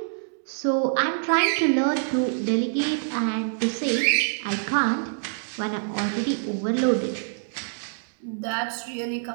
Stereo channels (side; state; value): left; silent; digital silence